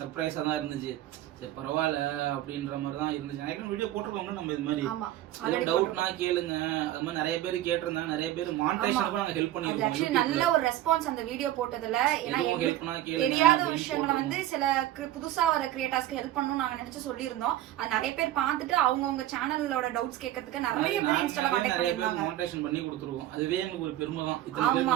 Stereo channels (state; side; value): quieter; left; 13.7 dB